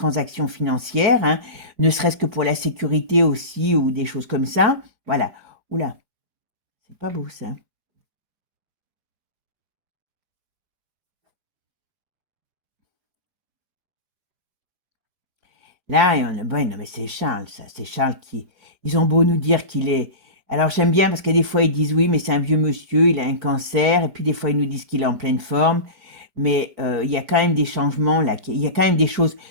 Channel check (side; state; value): left; late; 4.9 ms